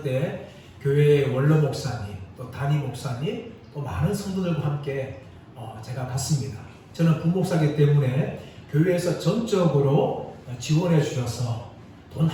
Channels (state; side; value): identical; both; correlation 1.00